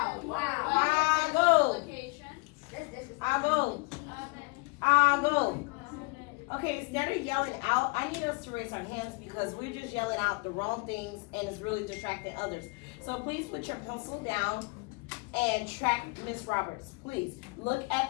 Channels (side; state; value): right; quieter; 28.8 dB